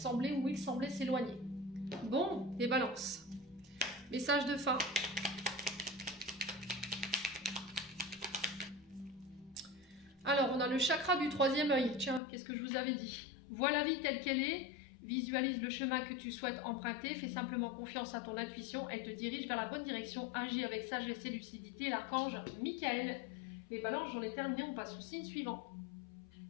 ou il semblait s'éloigner. Bon, les balances. Message de fin. Alors, on a le chakra du troisième œil. Tiens, qu'est-ce que je vous avais dit? Vois la vie telle qu'elle est, visualise le chemin que tu souhaites emprunter, fais simplement confiance à ton intuition, elle te dirige vers la bonne direction, agis avec sagesse et lucidité. L'archange Michael. Les balances, j'en ai terminé, on passe au signe suivant.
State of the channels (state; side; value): drops out; right; at 12.2 s